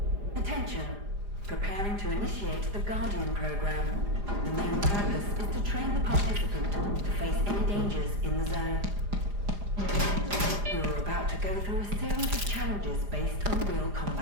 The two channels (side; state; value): left; late; 4.9 ms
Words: Attention. Preparing to initiate the Guardian program. The main purpose is to train the participant to face any dangers in the zone. You're about to go through a series of challenges based on real